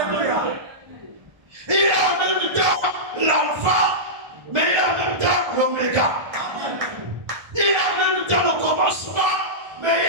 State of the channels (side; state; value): left; late; 1.5 ms